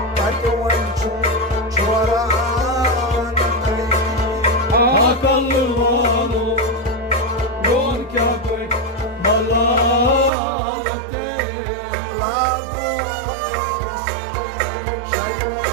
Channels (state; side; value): drops out; left; at 10.3 s